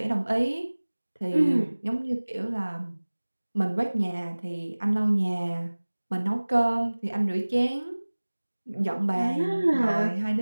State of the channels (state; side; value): inverted; both; correlation -1.00